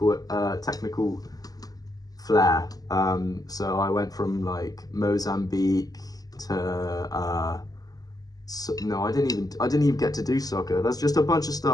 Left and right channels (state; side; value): late; right; 0.18 ms